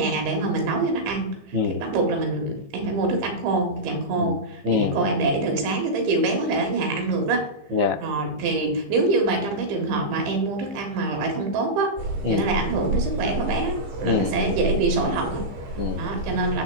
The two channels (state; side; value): late; left; 15 ms